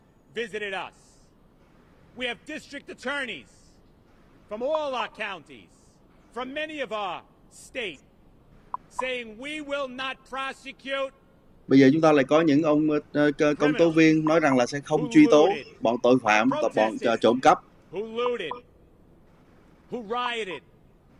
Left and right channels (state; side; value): identical; both; correlation 1.00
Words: visited us. We have district attorneys from all our counties, from many of our states, saying we will not prosecute. Bây giờ chúng ta lại có những ông công tố viên nói rằng là sẽ không truy tố bọn tội phạm, bọn trộm cắp, who looted, who rioted,